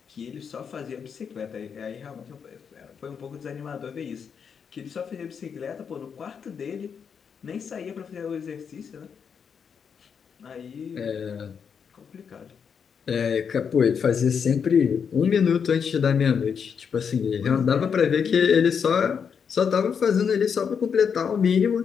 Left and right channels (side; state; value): right; quieter; 6.8 dB